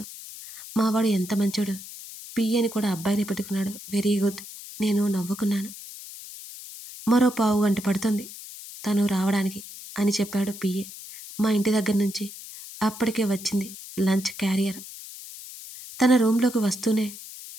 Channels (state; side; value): noise; left; hiss, 14 dB below the sound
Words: మావాడు ఎంత మంచోడు, పియ్యని కూడా అబ్బాయిని పెట్టుకున్నాడు. Very good. నేను నవ్వుకున్నాను. మరో 1/4 గంట పడుతుంది తను రావడానికి అని చెప్పాడు పియ్యే. మా ఇంటి దగ్గర నుంచి అప్పటికే వచ్చింది లంచ్ క్యారియర్. తన రూమ్లోకి వస్తూనే